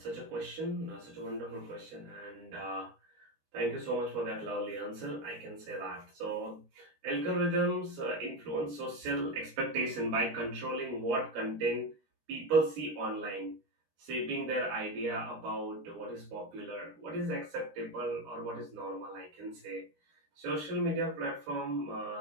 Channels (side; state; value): left; late; 13 ms